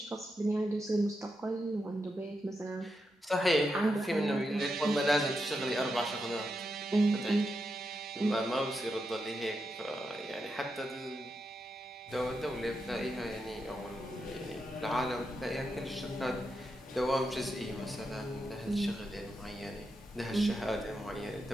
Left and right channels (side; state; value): both; normal; correlation 0.86